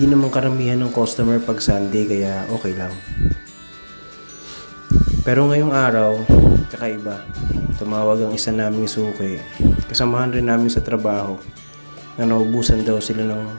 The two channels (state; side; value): inverted; both; correlation -1.00